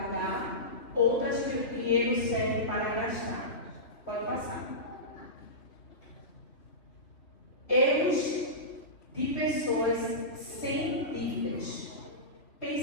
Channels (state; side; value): late; right; 3.2 ms